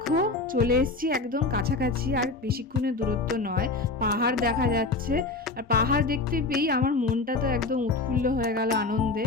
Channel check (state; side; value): quieter; right; 3.5 dB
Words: চলে এসেছি একদম কাছাকাছি, আর বেশিক্ষণের দূরত্ব নয়। পাহাড় দেখা যাচ্ছে, আর পাহাড় দেখতে পেয়েই আমার মনটা তো একদম উৎফুল্ল হয়ে গেল